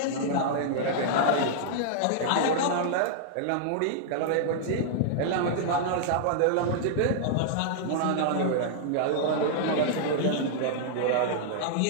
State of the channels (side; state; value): both; different; correlation -0.01